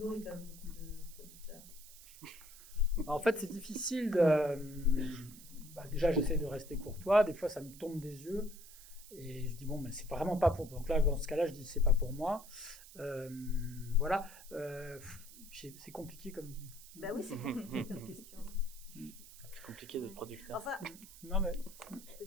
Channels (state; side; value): noise; right; hiss, 18 dB below the sound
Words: quand même de producteurs. En fait c'est difficile déjà j'essaie de rester courtois, des fois ça me tombe des yeux et je dis bon mais c'est vraiment pas pour, donc là dans ce cas-là je dis c'est pas pour moi. Voilà, c'est compliqué comme. Bah oui, c'est compliqué comme question. C'est compliqué d'être producteur. Enfin, non mais. Je peux